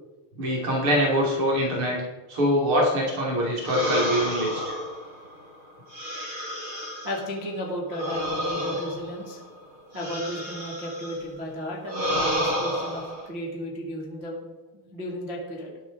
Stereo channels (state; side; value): late; left; 6.5 ms